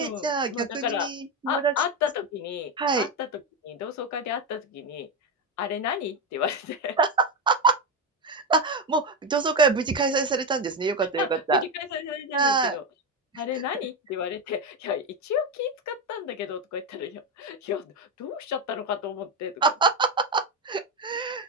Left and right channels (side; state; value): both; normal; correlation 0.11